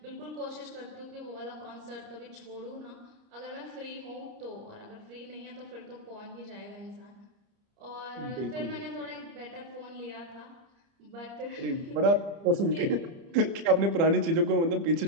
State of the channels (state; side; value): late; left; 30 ms